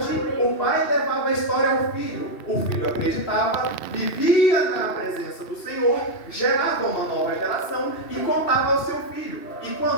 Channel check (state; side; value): late; right; 2.7 ms